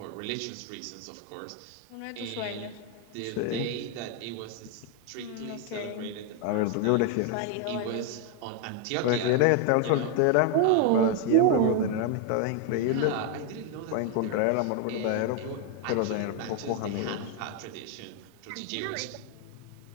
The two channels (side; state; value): both; different; correlation 0.01